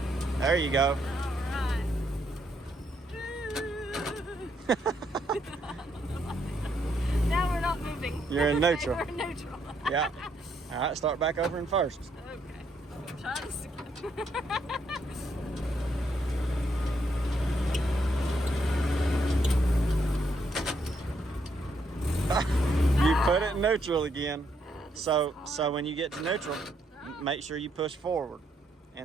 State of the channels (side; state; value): both; normal; correlation 0.75